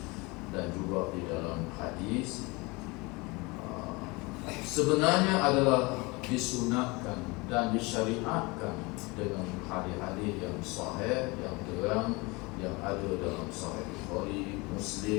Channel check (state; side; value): quieter; right; 25.6 dB